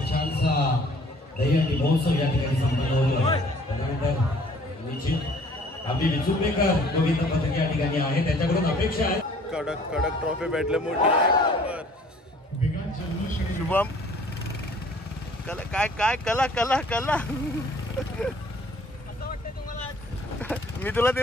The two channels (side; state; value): both; normal; correlation 0.55